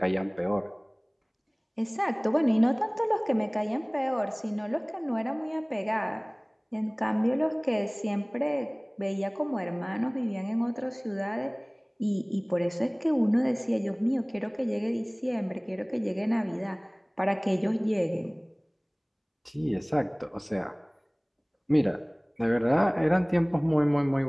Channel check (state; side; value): identical; both; correlation 1.00